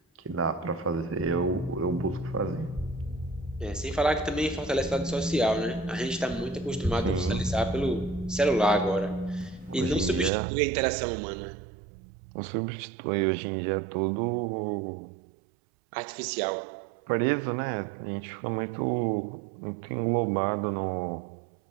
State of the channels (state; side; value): drops out; left; at 10.3 s